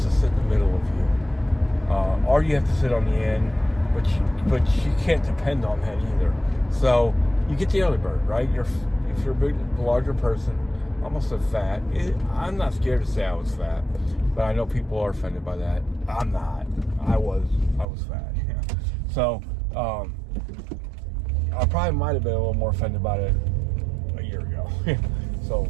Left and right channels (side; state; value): left; drops out; at 17.9 s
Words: to sit in the middle of you. Or you have to sit on the end, but you can't depend on that either. So you get the early bird, right? If you're a big, larger person, almost a fat. I'm not scared to say I was fat, but I know people are offended by that. I'm not. I was fat. Yeah. So I probably might have been a little more offended about it a year ago. So